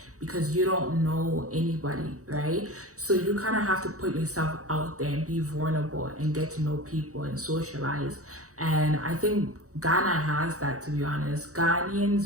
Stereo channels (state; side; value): late; left; 0.65 ms